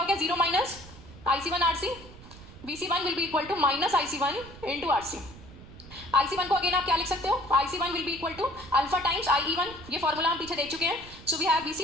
हो गया, 0 minus IC1 RC। VC1 will be equal to minus IC1 into RC। IC1 को अगेन आप क्या लिख सकते हो, IC1 will be equal to alpha times IE1, ये फॉर्मूला हम पीछे देख चुके हैं। So we have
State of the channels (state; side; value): noise; right; rumble, 18 dB below the sound